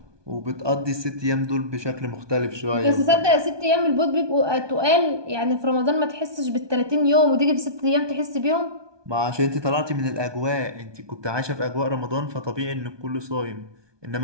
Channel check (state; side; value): late; left; 1.2 ms